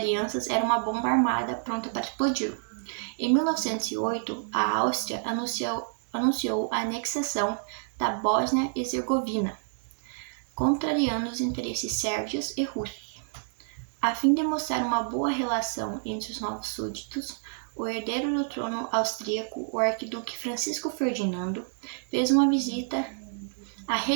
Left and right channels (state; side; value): silent; left; digital silence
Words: era uma bomba armada pronta para explodir. Em 1908, a Áustria anunciou a anexação da Bósnia-Herzegovina, contrariando os interesses sérvios e russos. A fim de mostrar uma boa relação entre os novos súditos, o herdeiro do trono austríaco, o arquiduque Francisco Ferdinando, fez uma visita à